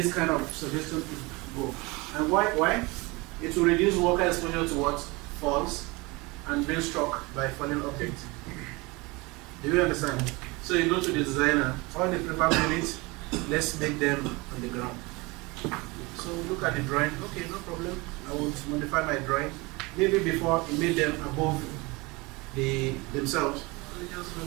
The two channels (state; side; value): quieter; left; 24.8 dB